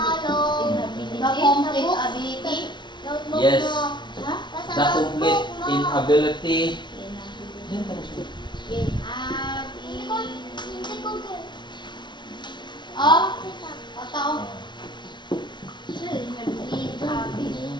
The complete ability. Yes. Ha? The complete inability.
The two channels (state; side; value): late; right; 0.22 ms